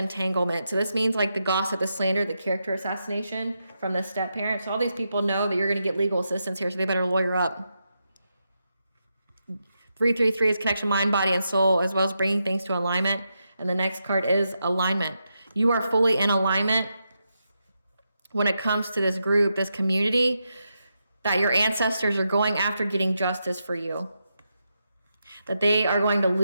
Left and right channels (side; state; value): both; inverted; correlation -0.85